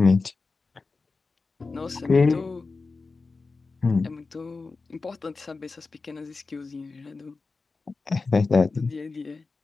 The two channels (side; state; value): right; quieter; 4.0 dB